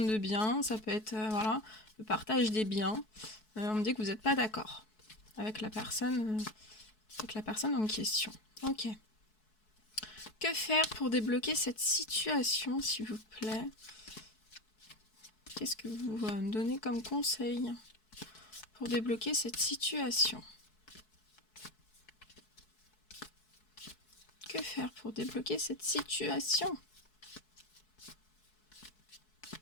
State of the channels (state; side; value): late; right; 4.6 ms